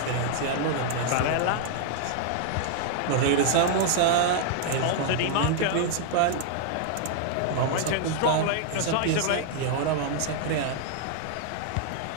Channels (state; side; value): different; both; correlation 0.00